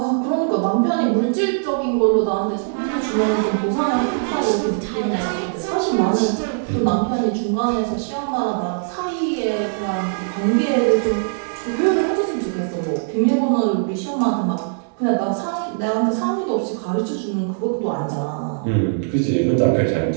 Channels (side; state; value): left; silent; 65 dB below the other